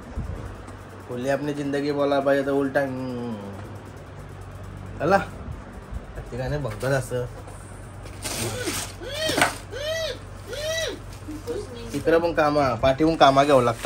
खुली अपनी जिंदगी बोला पाहिजे तर उलटा चला ठिकाणी बघतात असं. तिकडं पण कामा पाठीहून कामा घ्यावं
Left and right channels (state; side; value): identical; both; correlation 1.00